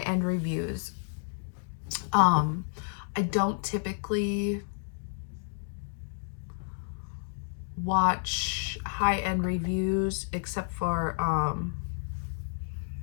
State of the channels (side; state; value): right; silent; digital silence